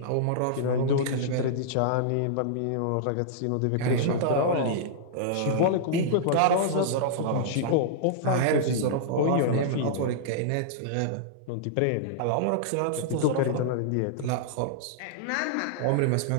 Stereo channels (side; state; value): both; different; correlation -0.02